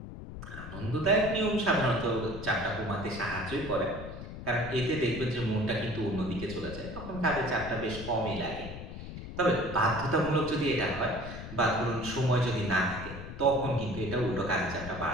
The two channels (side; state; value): left; noise; rumble, 10 dB below the sound